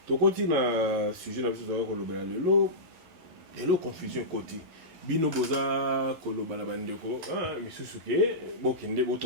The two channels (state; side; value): late; left; 11 ms